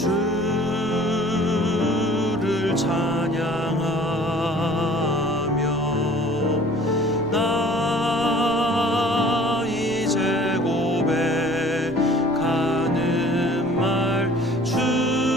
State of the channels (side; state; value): right; noise; rumble, 18 dB below the sound